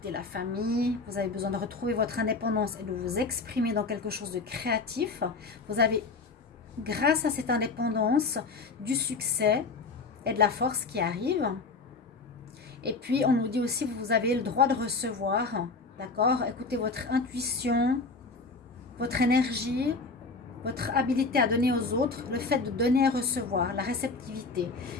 la famille, vous avez besoin de retrouver votre indépendance et de vous exprimer dans quelque chose de créatif. Vous avez, grâce à cette indépendance, du succès et de la force qui arrive. Et puis, on nous dit aussi, vous avez le droit de recevoir, d'accord? Écoutez votre intuition, votre énergie, votre habilité à donner aux autres, le fait de donner et recevoir, la réceptivité.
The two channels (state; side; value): quieter; right; 4.0 dB